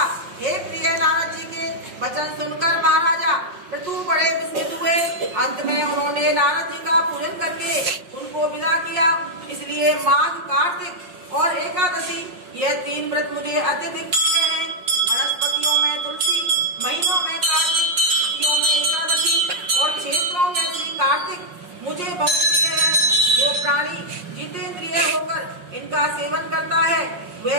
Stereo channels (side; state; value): left; late; 5.6 ms